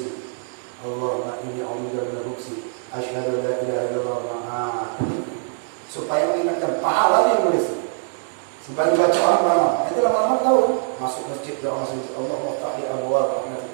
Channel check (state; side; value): silent; left; digital silence